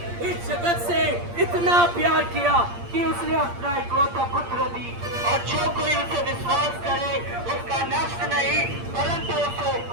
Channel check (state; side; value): late; left; 8.6 ms